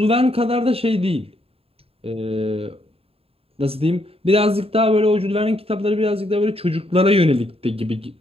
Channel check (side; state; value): left; late; 0.28 ms